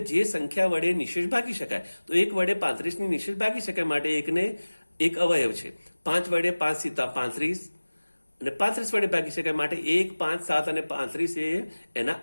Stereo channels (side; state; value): both; inverted; correlation -1.00